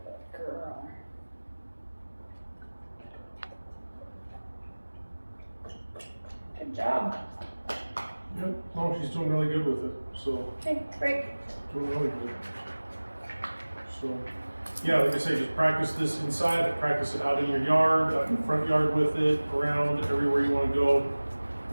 girl. Good job. Yep. No, she's doing really good with it. So Okay, break. doing really good. So yeah, like I say, just practice this inside, practice it out in your yard, out in the front yard with it, around everywhere you want to go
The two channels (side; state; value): both; inverted; correlation -1.00